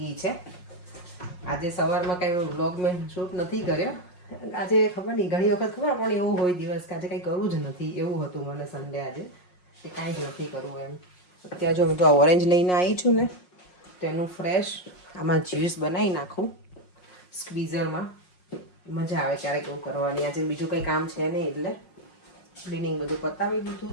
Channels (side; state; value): right; late; 5.5 ms